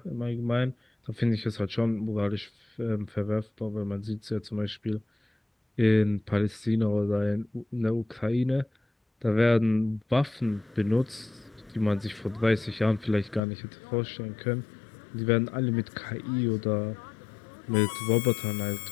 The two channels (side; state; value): right; drops out; at 13.4 s